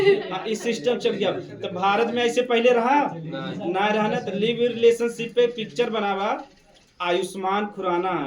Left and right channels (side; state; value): both; identical; correlation 1.00